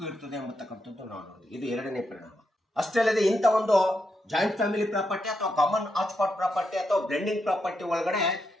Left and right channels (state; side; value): normal; both; correlation 0.83